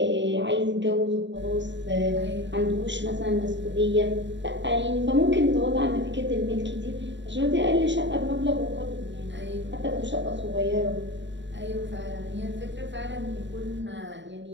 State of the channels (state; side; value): late; left; 0.53 ms